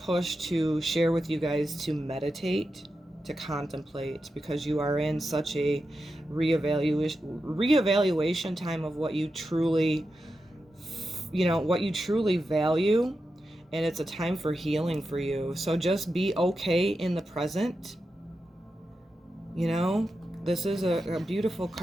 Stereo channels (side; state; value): both; normal; correlation 0.89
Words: to share with you guys to meditate, to contemplate, because you are in such a reevaluation time of what you truly, what you truly value. And it's a time for healing for you. So just be okay in the present. This is a beautiful